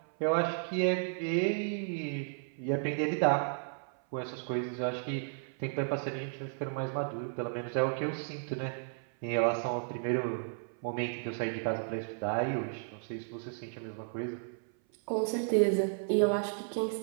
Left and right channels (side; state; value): left; silent; 55 dB below the other